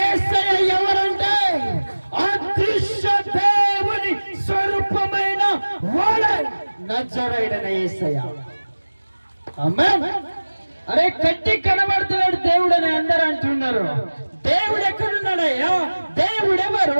ఎవరంటే అదృశ్య దేవుని స్వరూపమైన వాడే నజరేయుడైన యేసయ్య. ఆమేన్. అరే కట్టి కనబడుతున్నాడు దేవుడు అని అందరూ అంటున్నారు. దేవుడు ఎక్కడున్నాడయ్యా? దేవుడు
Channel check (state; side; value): inverted; both; correlation -1.00